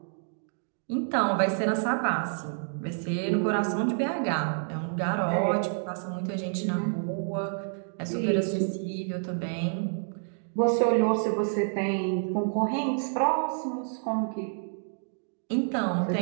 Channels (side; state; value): left; silent; digital silence